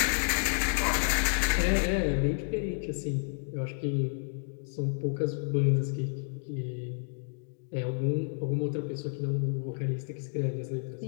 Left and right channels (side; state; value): right; silent; digital silence